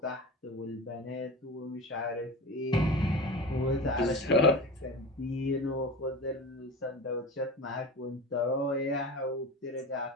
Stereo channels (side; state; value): both; normal; correlation 0.31